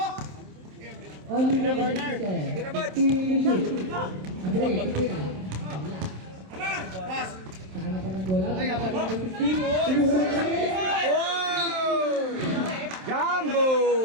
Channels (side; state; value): left; late; 27 ms